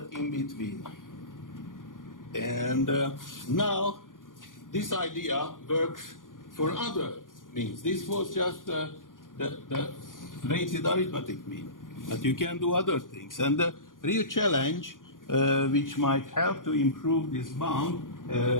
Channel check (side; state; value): right; late; 0.89 ms